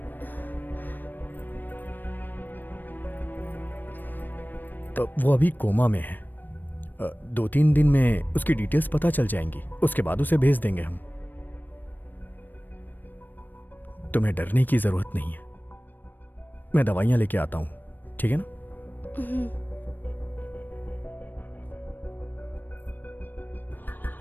तो वो अभी कोमा में है। 2-3 दिन में उसकी डिटेल्स पता चल जाएंगी, उसके बाद उसे भेज देंगे हम। तुम्हें डरने की जरूरत नहीं है, मैं दवाइयां लेके आता हूं, ठीक है ना?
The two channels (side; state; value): right; late; 0.091 ms